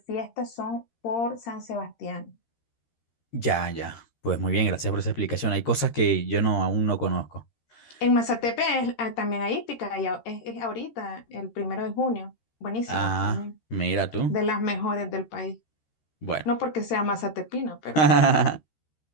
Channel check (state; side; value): late; right; 13 ms